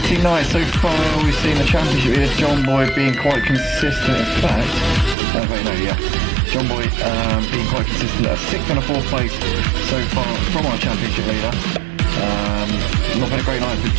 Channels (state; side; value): drops out; left; at 5.2 s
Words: night so far. We've seen the championship here, John Boy being quite consistent. In fact, John Boy being quite consistent at a 6th and a 4th place so far from our championship leader. Not been a great night for